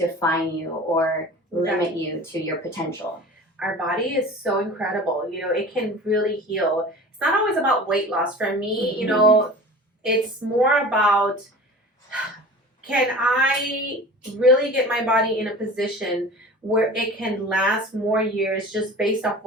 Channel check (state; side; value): normal; both; correlation 0.38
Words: you or limit you to your potential. Our body is so incredible. You know, it can really heal. It's not always about weight loss. For me, you know, it's more about, can I really get my body in a position where it can last more years just based off